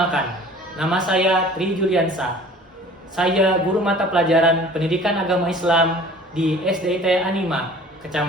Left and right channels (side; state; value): both; normal; correlation 0.47